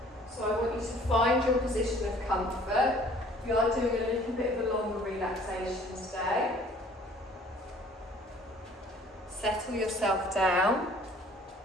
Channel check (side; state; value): both; normal; correlation 0.54